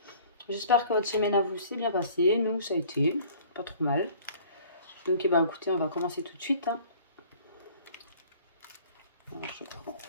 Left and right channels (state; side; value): inverted; both; correlation -0.51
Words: J'espère que votre semaine à vous s'est bien passée. Nous, ça a été pas trop mal. Donc, écoutez, on va commencer tout de suite. Hein. Alors, je prends